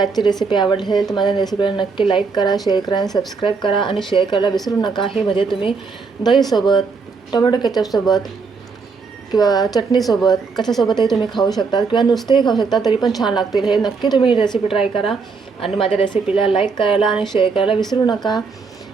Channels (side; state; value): left; quieter; 4.8 dB